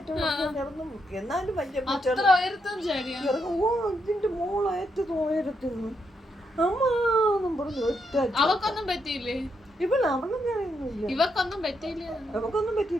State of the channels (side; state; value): both; normal; correlation 0.80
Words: കിടന്നു എന്നാലും വലിയ പൂച്ചകൾ ഇറങ്ങും ഓ ഇതിന്റെ മോളേറ്റത് ഉയരത്തിന്ന് അമ്മാന്നും പറഞ്ഞു ഒറ്റ അവക്കൊന്നും പറ്റിയില്ലേ ഇവള് അവളൊന്നും അറിയുന്നില്ല ഇവക്കൊന്നും പറ്റിയില്ല അവക്കൊന്നും